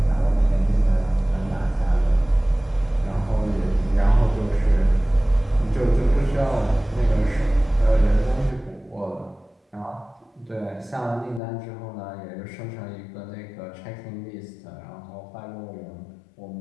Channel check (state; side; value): drops out; right; at 11.4 s